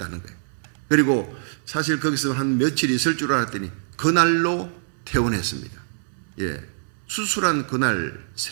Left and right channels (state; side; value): silent; left; digital silence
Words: 거예요. 그리고 사실 거기서 한 며칠 있을 줄 알았더니 그날로 퇴원했습니다. 수술한 그날